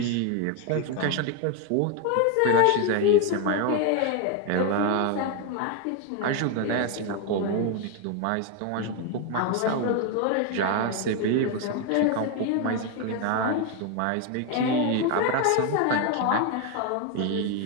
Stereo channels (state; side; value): different; both; correlation 0.01